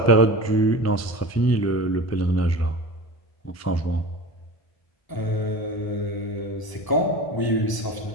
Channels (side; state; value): right; late; 1.0 ms